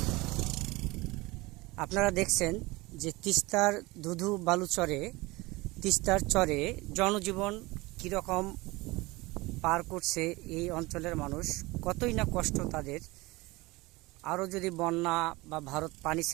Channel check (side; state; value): left; quieter; 22.2 dB